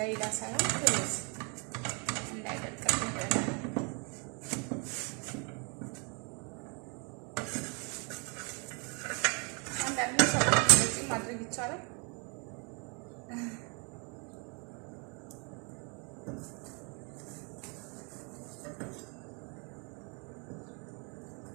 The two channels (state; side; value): quieter; left; 34.3 dB